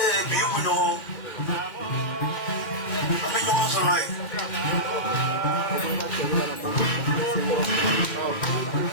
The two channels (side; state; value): right; late; 2.1 ms